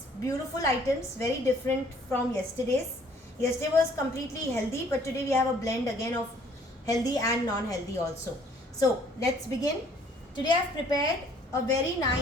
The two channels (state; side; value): normal; both; correlation 0.59